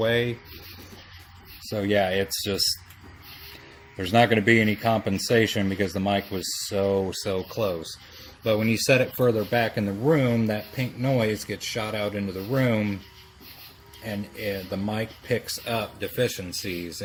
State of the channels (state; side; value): identical; both; correlation 1.00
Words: So yeah, it's just, there's not going to be any compensation because the mic was so close. But when you set it further back in the room, that pink noise gets shot out into the room, and the mic picks up deficiencies